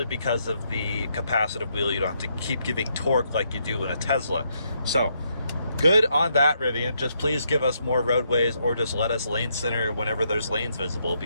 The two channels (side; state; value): both; inverted; correlation -0.76